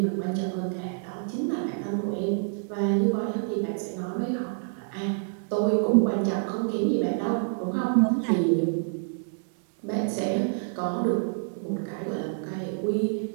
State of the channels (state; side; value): silent; left; 60 dB below the other